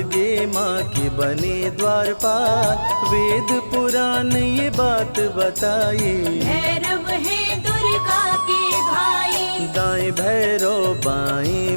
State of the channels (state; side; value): inverted; both; correlation -1.00